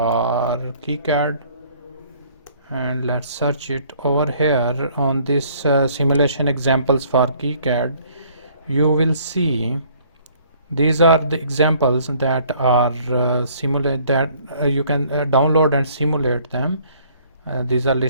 KiCad, and let's search it over here on this simulation examples for KiCad. You will see these are the examples that are simulate that you can download and simulate them. These are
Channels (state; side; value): inverted; both; correlation -0.59